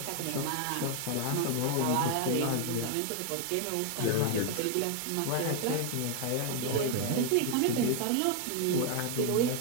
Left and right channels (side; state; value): both; different; correlation 0.01